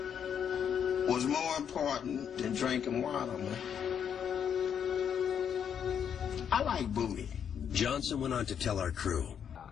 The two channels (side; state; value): right; quieter; 8.2 dB